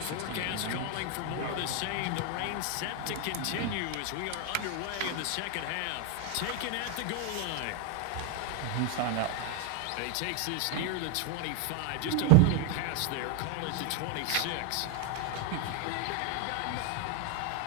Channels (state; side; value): different; both; correlation 0.01